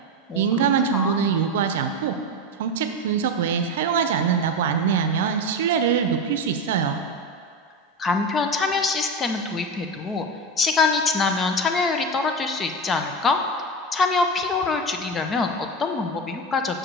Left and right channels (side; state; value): both; normal; correlation 0.18